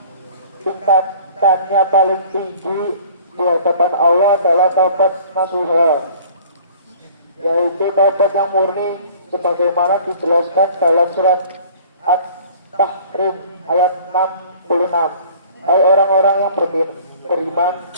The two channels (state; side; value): inverted; both; correlation -0.49